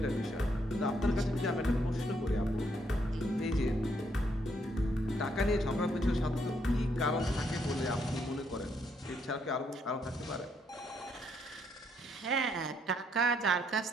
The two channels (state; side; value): normal; both; correlation 0.73